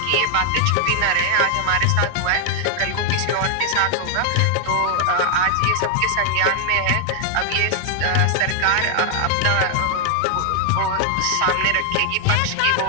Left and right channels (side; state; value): both; different; correlation 0.00